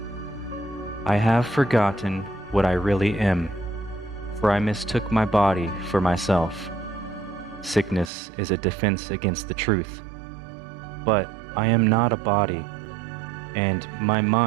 I have forgotten what I really am, for I mistook my body for myself. Sickness is a defense against the truth. But I am not a body, and my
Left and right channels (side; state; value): left; drops out; at 8.1 s